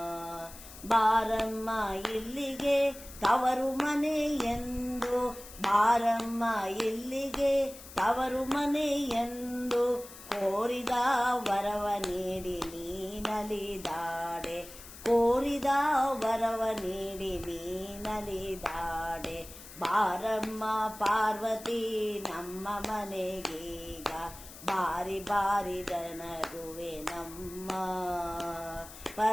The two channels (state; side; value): noise; left; hiss, 16 dB below the sound